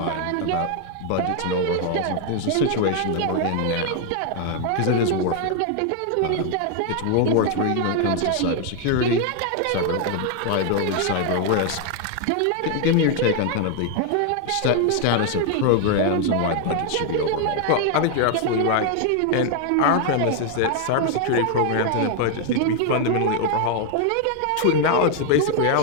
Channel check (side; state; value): both; different; correlation 0.00